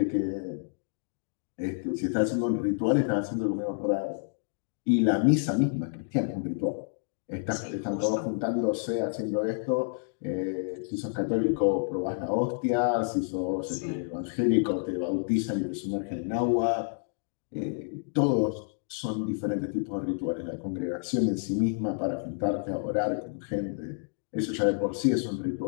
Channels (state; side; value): silent; right; digital silence